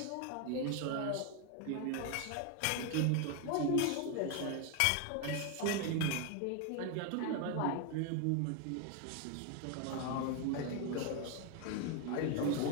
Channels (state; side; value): different; both; correlation 0.01